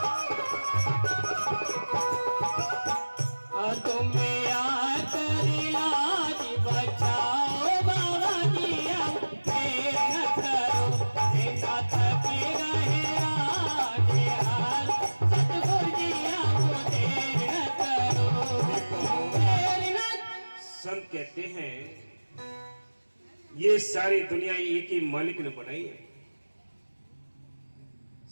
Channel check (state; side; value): inverted; both; correlation -1.00